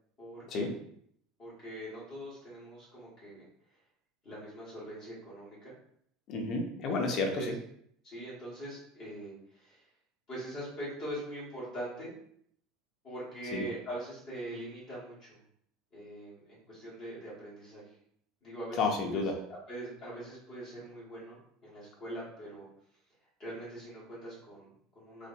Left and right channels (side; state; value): both; normal; correlation 0.35